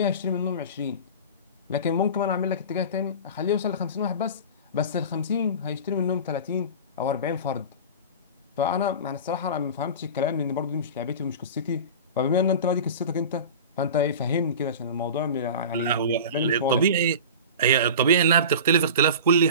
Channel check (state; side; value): inverted; both; correlation -0.33